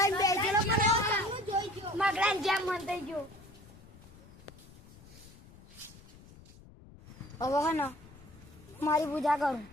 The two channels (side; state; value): left; noise; rumble, 21 dB below the sound